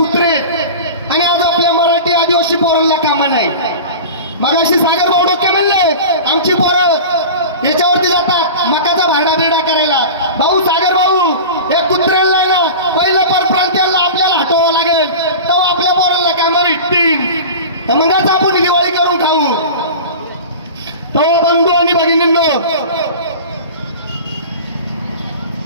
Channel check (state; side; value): inverted; both; correlation -0.33